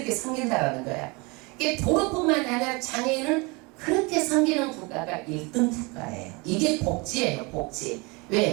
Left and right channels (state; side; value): quieter; left; 27.4 dB